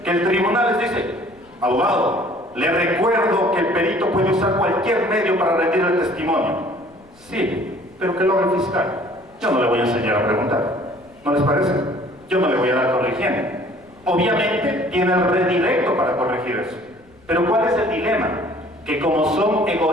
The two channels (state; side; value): noise; left; rumble, 29 dB below the sound